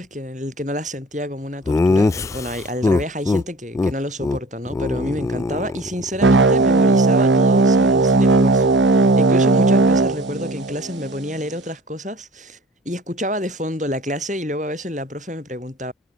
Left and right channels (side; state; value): both; normal; correlation 0.44